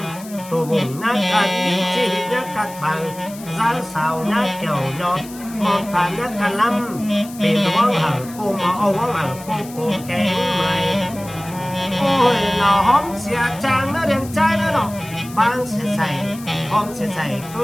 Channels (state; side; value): noise; left; hiss, 17 dB below the sound